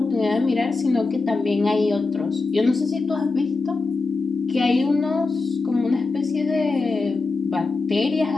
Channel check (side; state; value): right; quieter; 3.8 dB